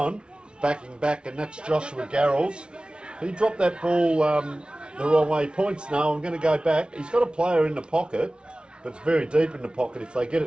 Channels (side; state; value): left; late; 0.056 ms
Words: backing back, and that's Joshua Garrels. He dropped that ball the wrong way. Points, no, I'm going to go back. He's got a player in the pocket, but it's very deep in the pocket. If they get